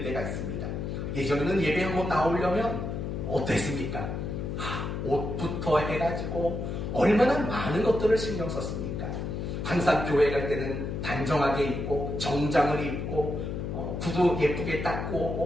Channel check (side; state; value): left; noise; hum, 4 dB below the sound